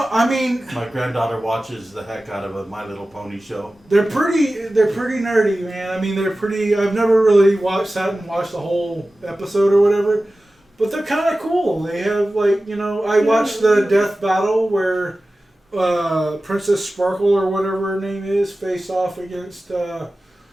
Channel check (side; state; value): both; normal; correlation 0.95